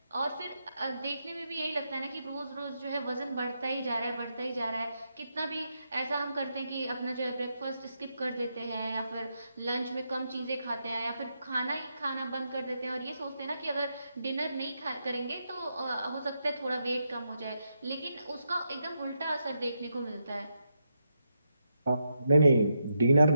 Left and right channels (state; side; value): inverted; both; correlation -0.83